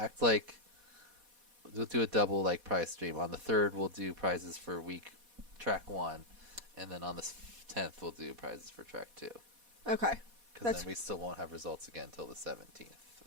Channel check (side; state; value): left; late; 4.1 ms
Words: like, we'll do a double like prize stream. On the 3rd, we'll do prizes for track 1. And then on the 10th, we'll do prizes for track 2. Okay. Because then we still won't have results again until the 17th.